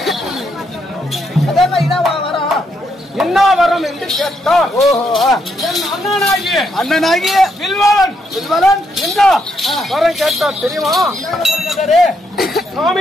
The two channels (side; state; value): both; normal; correlation 0.77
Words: என்ன வரம் என்று கேட்டார். என் அண்ணனாகிய வில்வலன் என்ன வரம் கேட்டார் தெரியுமா?